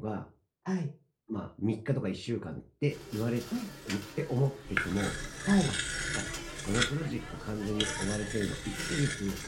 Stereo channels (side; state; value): both; identical; correlation 1.00